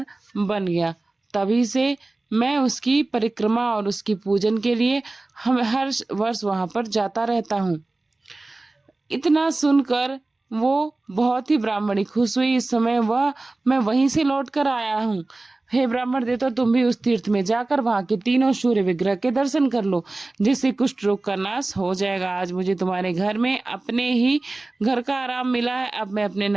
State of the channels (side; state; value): left; quieter; 3.0 dB